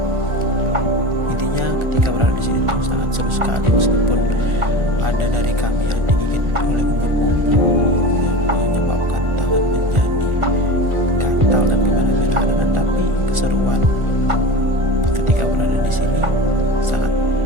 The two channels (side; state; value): left; late; 1.4 ms